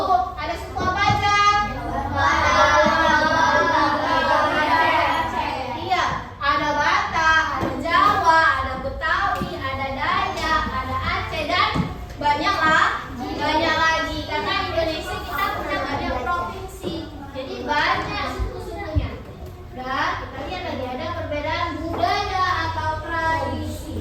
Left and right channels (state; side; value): identical; both; correlation 1.00